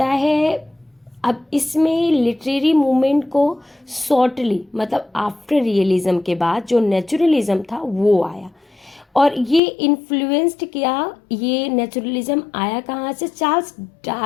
है, अब इसमें लिटरेरी मूवमेंट को शॉर्टली मतलब आफ्टर रियलिज्म के बाद जो नेचुरलिज्म था वो आया, और ये इन्फ्लुएंस्ड किया। ये नेचुरलिज्म आया कहाँ से, चार्ल्स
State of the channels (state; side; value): drops out; right; at 9.6 s